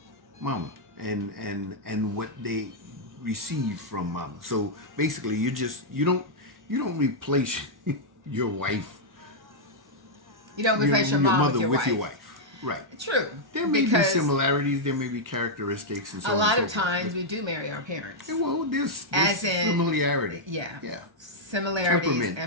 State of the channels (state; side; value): late; left; 1.3 ms